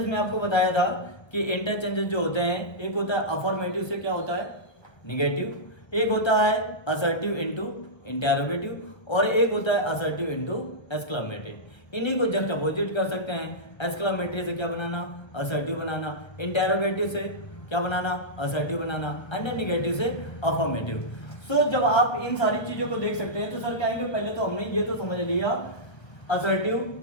में आपको बताया था कि इंटरचेंजेस जो होते हैं, एक होता है अफर्मेटिव से क्या होता है निगेटिव, एक होता है असर्टिव इनटू इंटेरोगेटिव, और एक होता है असर्टिव इनटू एक्सक्लेमेटरी। इन्हीं को जस्ट अपोजिट कर सकते हैं। एक्सक्लेमेटरी से क्या बनाना, असर्टिव बनाना, इंटेरोगेटिव से क्या बनाना, असर्टिव बनाना, एंड निगेटिव से अफर्मेटिव। सो जब आप इन सारी चीजों को देख सकते हैं तो सर क्या है, पहले तो हमने ये तो समझ लिया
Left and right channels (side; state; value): right; late; 1.3 ms